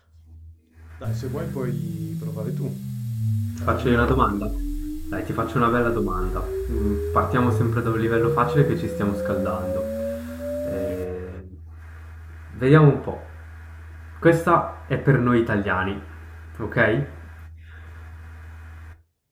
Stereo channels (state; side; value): identical; both; correlation 1.00